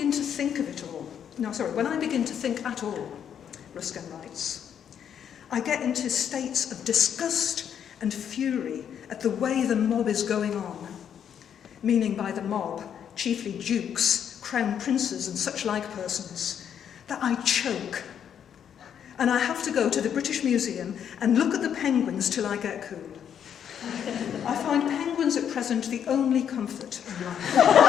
to think at all, Ruskin writes, I get into states of disgust and fury at the way the mob is going on. Meaning by the mob, chiefly dukes, crown princes and such like persons, that I choke. And I have to go to the British Museum and look at the penguins till I get cool. I find penguins at present the only comfort in life.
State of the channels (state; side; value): quieter; right; 8.7 dB